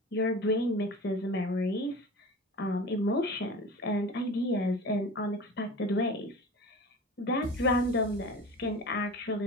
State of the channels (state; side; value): normal; both; correlation 0.35